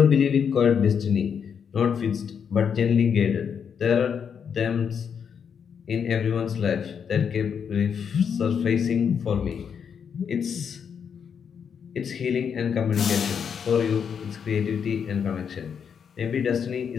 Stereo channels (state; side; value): quieter; right; 7.2 dB